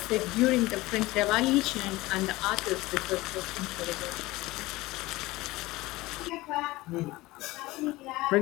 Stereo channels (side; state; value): right; quieter; 19.6 dB